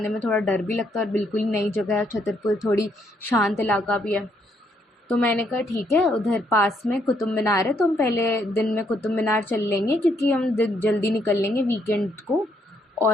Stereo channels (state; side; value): normal; both; correlation 0.73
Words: में थोड़ा डर भी लगता है और बिल्कुल ही नई जगह है, छतरपुर थोड़ी शांत इलाका भी है। तो मैंने कहा ठीक है, उधर पास में कुतुब मीनार है, तो हम पहले दिन में कुतुब मीनार चल लेंगे, क्योंकि हम जल्दी निकल लेंगे वीकेंड को।